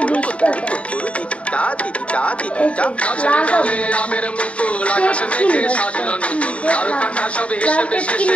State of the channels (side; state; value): right; late; 0.063 ms